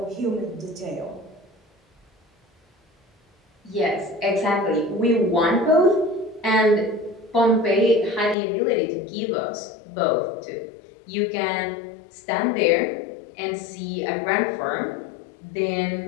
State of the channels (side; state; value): right; drops out; at 8.3 s